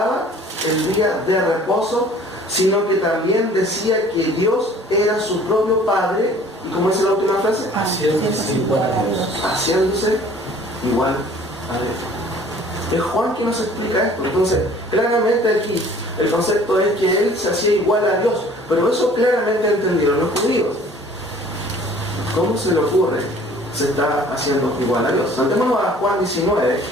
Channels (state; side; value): normal; both; correlation 0.52